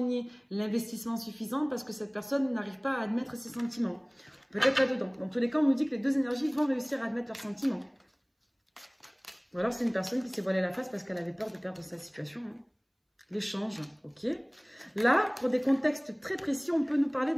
l'investissement suffisant parce que cette personne n'arrive pas à admettre ses sentiments. Peut-être là-dedans. Dans tous les cas, on nous dit que les deux énergies vont réussir à admettre leurs sentiments. Ou alors c'est une personne qui s'est voilée la face parce qu'elle avait peur de perdre sa situation. Hein. L'échange, ok. Là, pour des contextes très précis, on peut nous parler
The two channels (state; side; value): identical; both; correlation 1.00